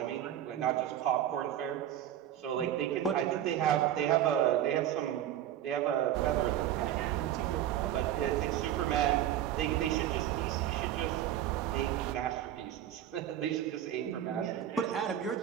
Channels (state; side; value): quieter; left; 11.5 dB